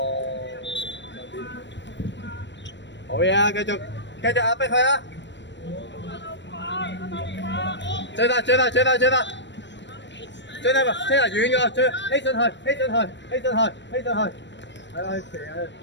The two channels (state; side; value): late; right; 0.53 ms